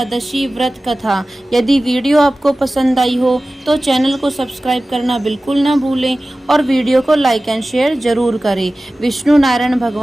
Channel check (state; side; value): normal; both; correlation 0.96